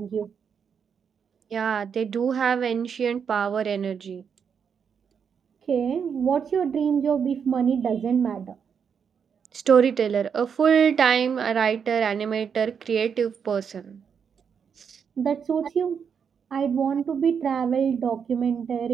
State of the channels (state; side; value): quieter; left; 6.9 dB